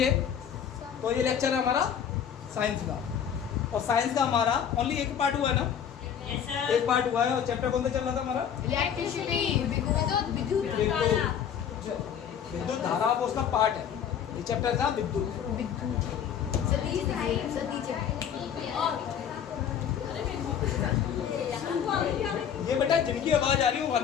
तो ये लेक्चर है हमारा साइंस का, और साइंस का हमारा ओनली एक पार्ट हुआ है ना? Yes, sir. एक पार्ट हुआ है, और चैप्टर कौन सा चल रहा था हमारा? इलेक्ट्रिसिटी, विद्युत धारा वो उसका पार्ट है। ये चैप्टर था विद्युत। ये बेटा जिनकी आवाज आ रही है वो बाहर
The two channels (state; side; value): quieter; right; 8.5 dB